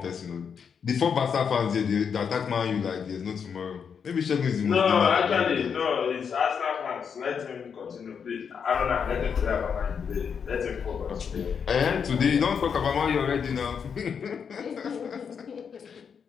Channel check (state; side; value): quieter; right; 6.8 dB